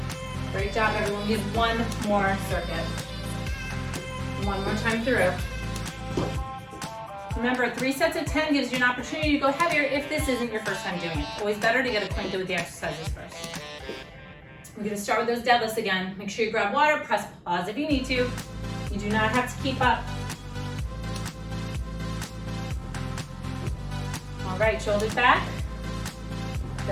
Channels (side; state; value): both; identical; correlation 1.00